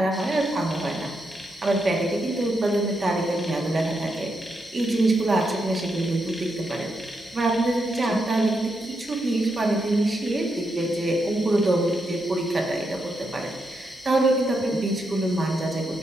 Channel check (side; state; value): both; normal; correlation 0.82